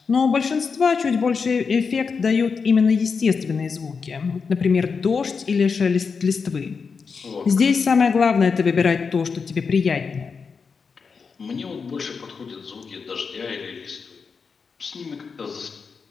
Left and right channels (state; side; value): quieter; right; 5.4 dB